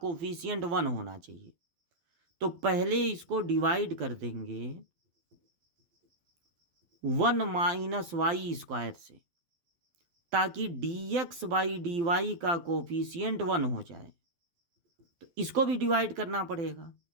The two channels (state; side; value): late; left; 12 ms